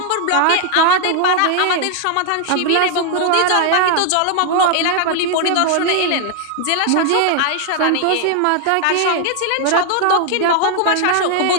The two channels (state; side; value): different; both; correlation 0.00